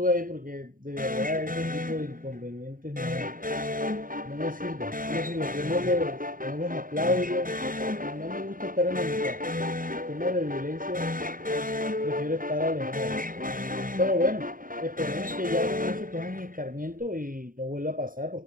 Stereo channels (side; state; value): left; late; 0.40 ms